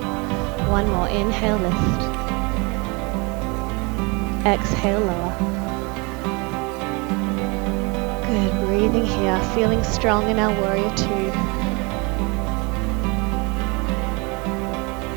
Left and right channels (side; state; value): left; quieter; 28.8 dB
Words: One more. Inhale, lift. Exhale, lower. Good. Breathing here. Feeling strong in our warrior two.